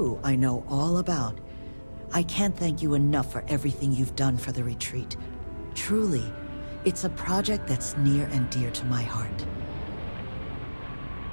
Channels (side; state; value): both; inverted; correlation -1.00